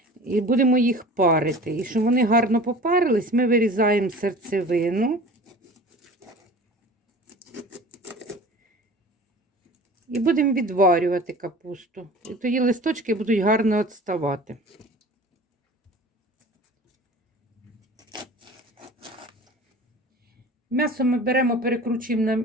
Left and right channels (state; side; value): normal; both; correlation 0.41